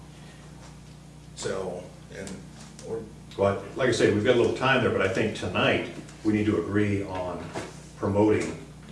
So, Well, like I say, we've got a little time there, but I think tonight, we need to agree on promoting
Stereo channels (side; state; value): both; identical; correlation 1.00